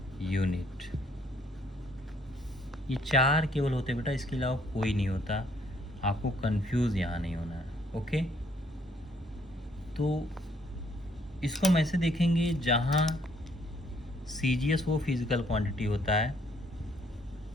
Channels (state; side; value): normal; both; correlation 0.66